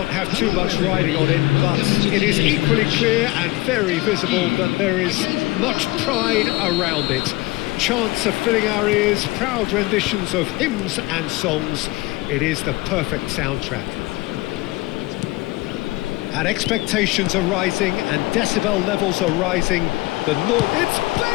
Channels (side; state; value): right; quieter; 21.2 dB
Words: have too much riding on it, but it is equally clear and very visible that there is much pride around it. Chants are filling our ears, proud renditions of hymns and songs. It is the perfect soundtrack. And expectations are rising and decibel levels are rising. The noise... It's